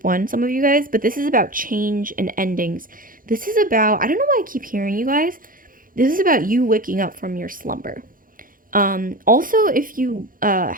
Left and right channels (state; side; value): late; left; 0.40 ms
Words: 1, some of you guys. But this is about change and endings. This is about, I don't know why I keep hearing you guys. This is about you waking up from your slumber. Also, if you